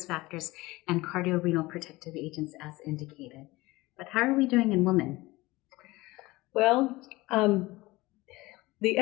factors, and cardiorenal protective agents as indicated. But how are we doing in women? Well, the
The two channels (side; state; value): right; quieter; 20.5 dB